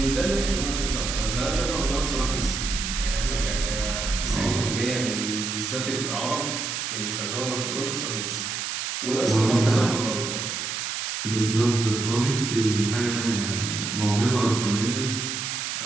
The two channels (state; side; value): noise; right; hiss, 3 dB below the sound